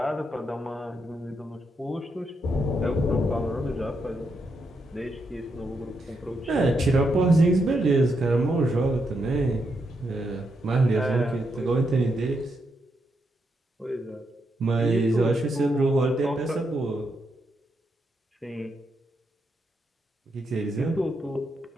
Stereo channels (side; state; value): both; normal; correlation 0.81